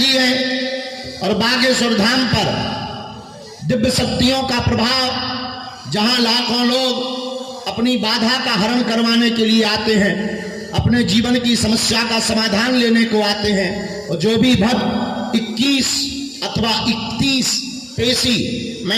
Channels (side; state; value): both; identical; correlation 1.00